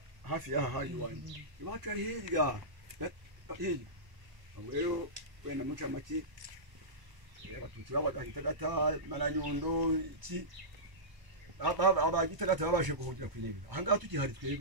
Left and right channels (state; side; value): late; left; 1.0 ms